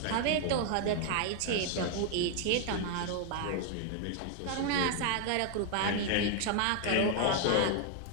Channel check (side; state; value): both; different; correlation 0.00